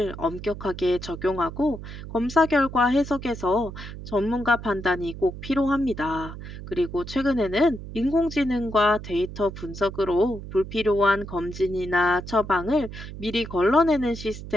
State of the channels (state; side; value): noise; right; hum, 11 dB below the sound